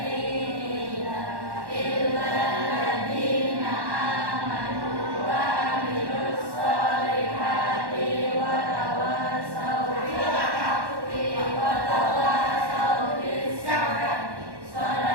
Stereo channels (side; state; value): left; late; 1.1 ms